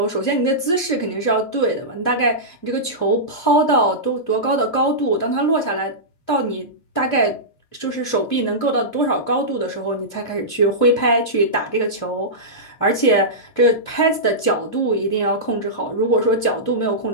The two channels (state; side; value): late; right; 2.7 ms